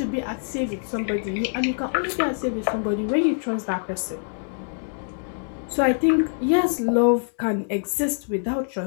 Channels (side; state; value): right; silent; 62 dB below the other